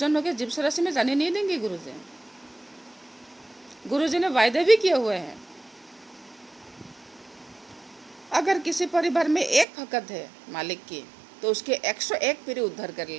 होगे, जीव राशि में जाने नहीं देंगे गुरुजी। गुरुजी ने वायदे भी किए हुए हैं। अगर किसी परिवार में एक भगत है मालिक की, तो उसके 101 पीढ़ी उद्धार कर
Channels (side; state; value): left; drops out; at 9.7 s